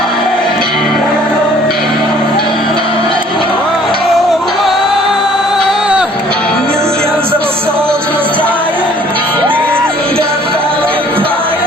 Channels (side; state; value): both; normal; correlation 0.56